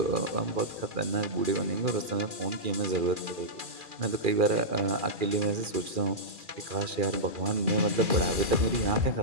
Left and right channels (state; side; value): late; left; 2.4 ms